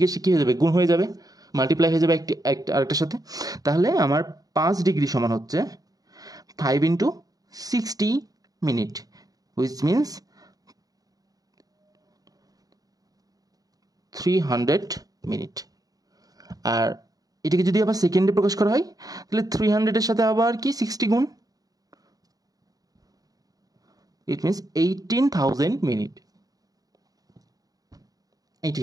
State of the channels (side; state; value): left; late; 0.18 ms